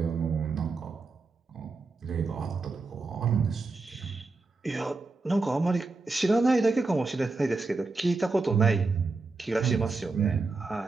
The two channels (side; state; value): left; quieter; 3.8 dB